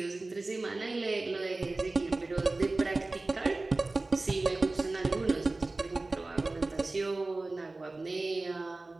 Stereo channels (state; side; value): quieter; left; 3.2 dB